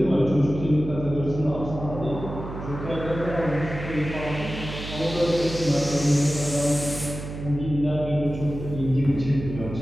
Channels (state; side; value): noise; right; hum, 9 dB below the sound